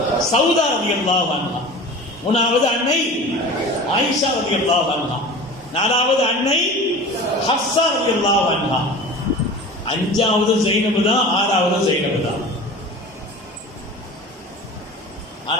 சௌதா ரலியல்லாஹு அன்ஹா. மூணாவது அன்னை ஆயிஷா ரலியல்லாஹு அன்ஹா. நாலாவது அன்னை ஹஃப்ஸா ரலியல்லாஹு அன்ஹா. 5வது ஸைனப் தான், 6வது ஸைனப் தான்.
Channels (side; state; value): both; normal; correlation 0.37